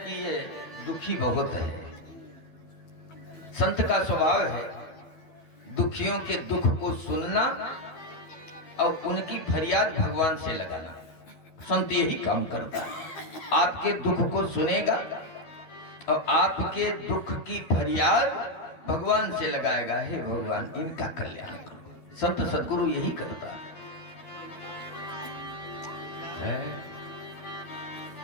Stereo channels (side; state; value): right; late; 12 ms